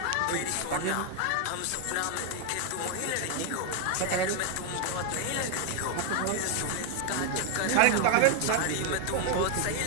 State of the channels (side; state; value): both; different; correlation 0.01